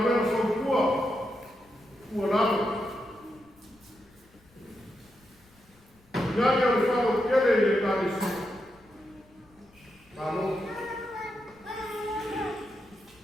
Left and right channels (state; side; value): noise; left; rumble, 30 dB below the sound